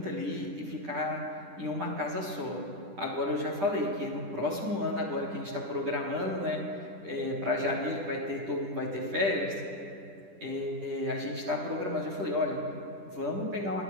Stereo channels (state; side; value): late; left; 10 ms